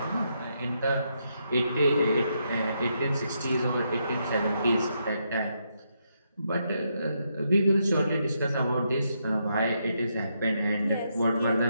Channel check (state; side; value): inverted; both; correlation -0.79